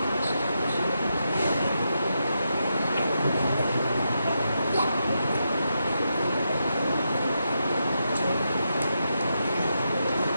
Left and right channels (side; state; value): both; inverted; correlation -0.84